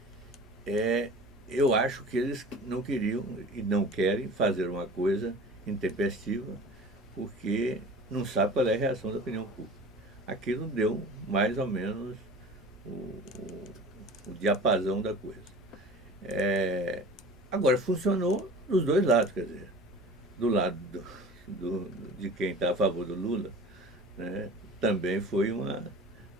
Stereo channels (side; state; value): both; normal; correlation 0.40